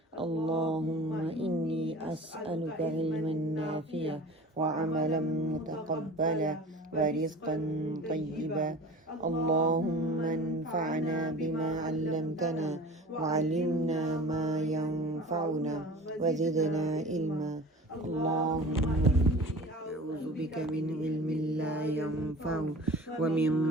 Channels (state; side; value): normal; both; correlation 0.39